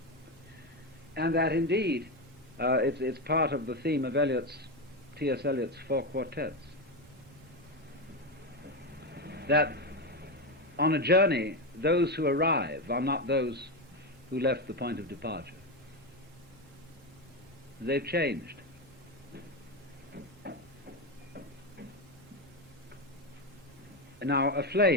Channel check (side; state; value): both; normal; correlation 0.12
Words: And that indeed it's part of the theme of T.S. Eliot's four quartets, that on a journey those who arrive are not those who left the point of departure. They've changed. Now, a